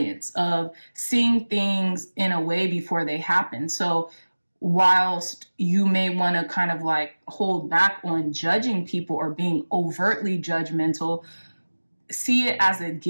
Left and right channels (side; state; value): both; inverted; correlation -1.00